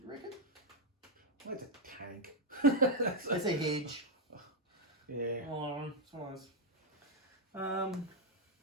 reckon? It's a tank. It's a hedge. Yeah. Oh, it's one of those.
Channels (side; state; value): both; normal; correlation 0.01